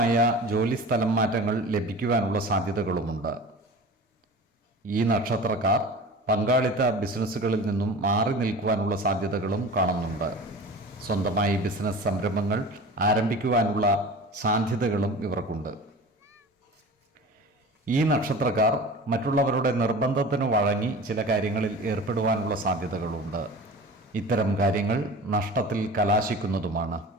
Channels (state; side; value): normal; both; correlation 0.37